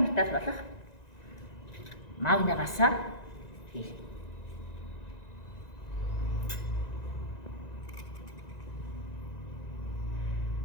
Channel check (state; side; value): late; right; 1.9 ms